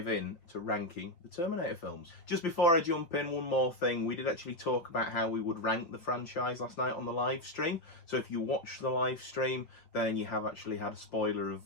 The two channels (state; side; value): late; right; 5.9 ms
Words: in to ranking the Terminator films. Just before I jump in, one more thing. We did actually talk about how we would rank the franchise last night on the live stream. So if you watch the live stream, then you have actually had a spoiler